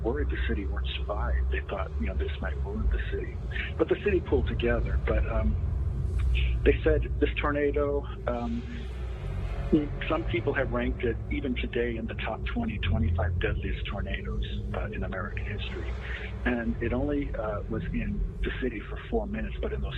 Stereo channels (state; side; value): identical; both; correlation 1.00